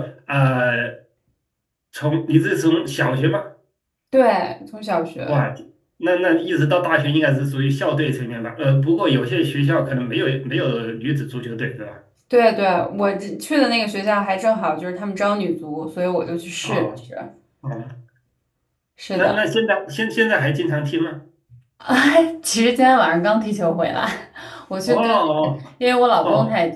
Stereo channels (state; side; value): identical; both; correlation 1.00